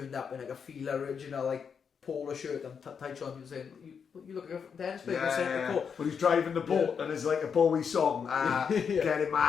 up in like a Fila original like polo shirt and tight shorts. And saying, "You look like a dance player." When he's driving the boat and there's like a Bowie song, getting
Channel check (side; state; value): right; quieter; 6.6 dB